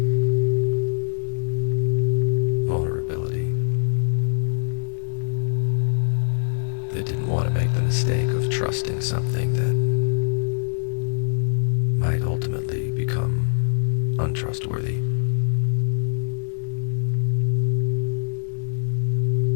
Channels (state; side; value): silent; right; digital silence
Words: vulnerability, that didn't want to make the mistake of trusting something that might ultimately become untrustworthy.